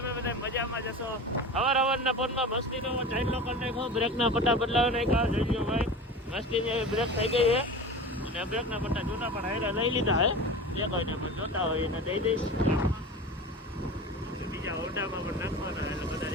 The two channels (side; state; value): both; normal; correlation 0.32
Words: બધા મજામાં જશો. હવારના ફોનમાં મસ્તીનો ચાઇલ્ડ લોકર નાખો, બ્રેકના પટ્ટા બદલાવી નાખ્યા. જોઈ લો ભાઈ, મસ્તીની બ્રેક થઈ ગઈ છે અને બ્રેકના પટ્ટા જૂના પણ હારે લઈ લીધા હે. જે કોઈને પણ જોતા હોય એને દઈ દઈશ. બીજા હોન્ડામાં પણ નાખવાના એટલે બધા